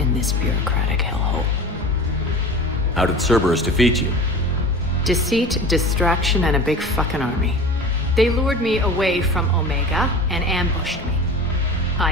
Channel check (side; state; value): both; normal; correlation 0.35